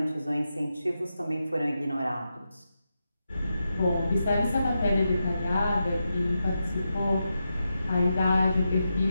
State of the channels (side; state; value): both; inverted; correlation -0.88